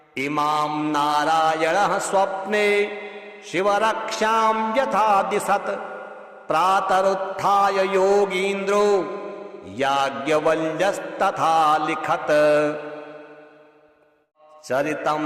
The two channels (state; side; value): identical; both; correlation 1.00